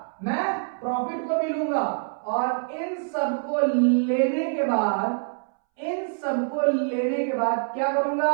मैं प्रॉफिट को भी लूंगा, और इन सबको लेने के बाद, इन सबको लेने के बाद क्या करूंगा,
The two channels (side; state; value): left; silent; 61 dB below the other